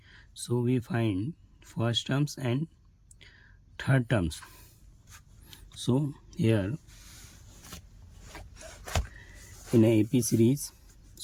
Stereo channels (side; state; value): both; identical; correlation 1.00